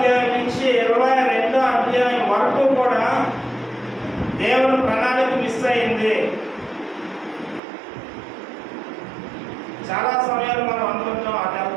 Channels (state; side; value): drops out; left; at 7.6 s